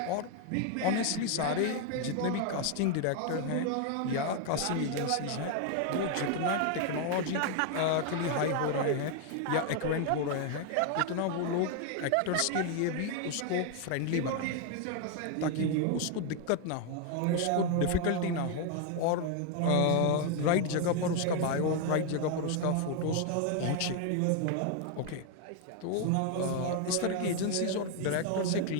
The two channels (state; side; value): different; both; correlation 0.00